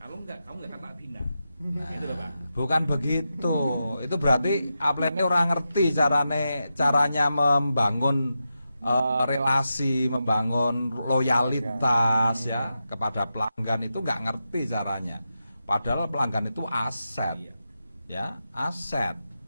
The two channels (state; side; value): inverted; both; correlation -0.88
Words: enggak, kamu enggak tak bina. Nah, Gitu loh, Pak. bukan begitu. Itu berarti upline orang ngerti caranya membangun relasi, membangun loyalitas ya kepada pelanggan, itu nggak ngerti caranya. Padahal pelanggan itu aset, ya aset.